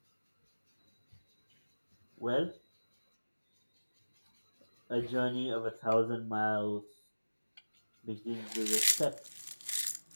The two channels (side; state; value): both; inverted; correlation -1.00